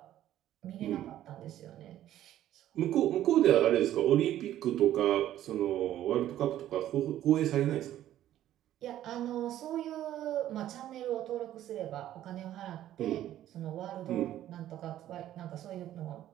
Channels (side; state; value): left; quieter; 12.6 dB